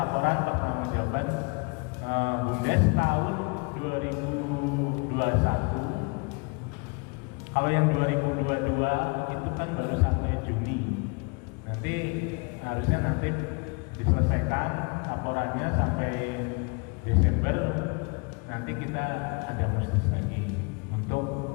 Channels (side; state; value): right; quieter; 31.9 dB